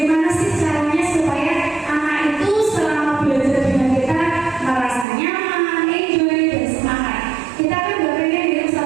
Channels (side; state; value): left; drops out; at 5.1 s